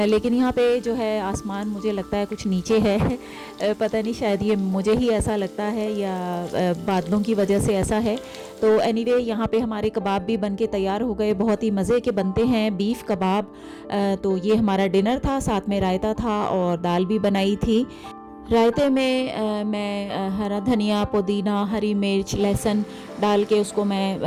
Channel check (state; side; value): identical; both; correlation 1.00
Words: लेकिन यहाँ पे जो है आसमान मुझे लगता है कुछ नीचे है। पता नहीं, शायद ये मुझे ही ऐसा लगता है या बादलों की वजह से ऐसा है। तो एनीवे यहाँ पे हमारे कबाब भी बन के तैयार हो गए, बहुत ही मज़े के बनते हैं बीफ कबाब। तो ये हमारा डिनर था, साथ में रायता था और दाल भी बनाई थी। रायते में मैं हरा धनिया, पुदीना, हरी मिर्च, लहसुन डाल के उसको